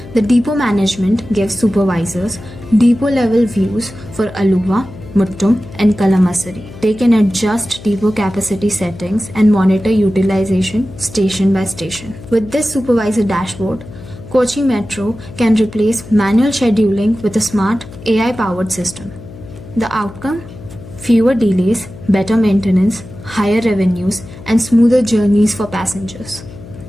the depot management gives supervisors depot-level views for Aluva, Muttum, and Kalamassery. They can adjust depot capacity settings and monitor utilization station by station. With this supervisor dashboard, Kochi Metro can replace manual scheduling with a smart AI-powered system. The outcome? Fewer delays, better maintenance, higher revenues, and smoother journeys for passengers.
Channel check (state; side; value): noise; left; hum, 16 dB below the sound